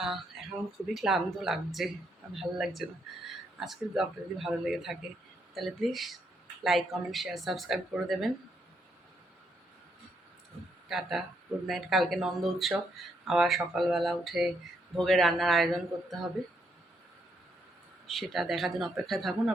এখন খুবই ক্লান্ত লাগছে, আর ভালো লাগছে না। আজকের ব্লগটা যদি ভালো লেগে থাকে তাহলে please like, comment, share, subscribe করে দেবেন। Tata, good night. কালকে নন্দ উৎসব, আবার সকালবেলা উঠে ভোগের রান্নার আয়োজন করতে হবে, সেটা দেখার জন্য অপেক্ষায় থাকুন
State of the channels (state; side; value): normal; both; correlation 0.76